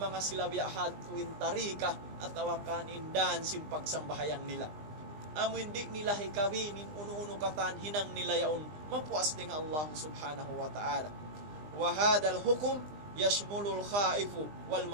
sila biyahad tuwin tarika at tawakan indan sim pagsambahayang nila. Amo hindi nila hikawinin uno-uno katan hinang nila yaon mapuas ding Allah subhanahu wa ta'ala. Wa hadal hukum yashmulul khaifu wal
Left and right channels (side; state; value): left; late; 20 ms